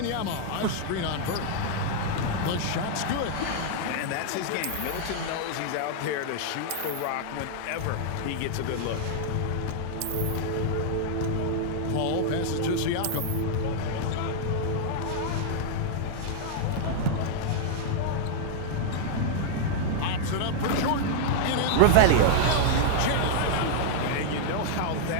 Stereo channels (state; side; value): different; both; correlation -0.01